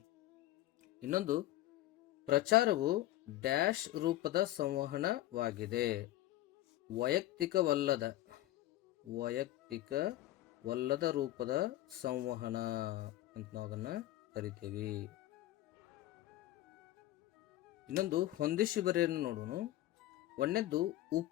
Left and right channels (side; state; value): right; quieter; 15.1 dB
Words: ಇನ್ನೊಂದು, ಪ್ರಚಾರವು ಡ್ಯಾಶ್ ರೂಪದ ಸಂವಹನವಾಗಿದೆ. ವೈಯಕ್ತಿಕವಲ್ಲದ ರೂಪದ ಸಂವಹನ ಅಂತ ನಾವು ಅದನ್ನ ಕರಿತೀವಿ. ಇನ್ನೊಂದು, ಹೊಂದಿಸಿ ಬರೆಯನ್ನು ನೋಡೋಣ. ಒಂದನೇದ್ದು,